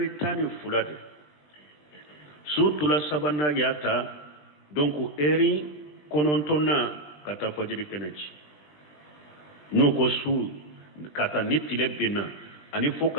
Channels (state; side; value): late; right; 20 ms